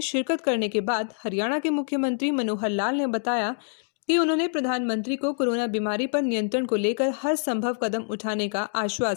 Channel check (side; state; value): right; silent; digital silence